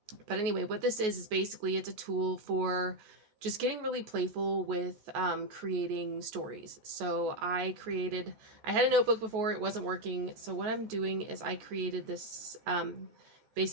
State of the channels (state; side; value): late; left; 14 ms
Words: but anyway, what this is basically it's a tool for just getting really playful with creating stories. So I had a notebook before, it wasn't working. So what I'm doing is I created this,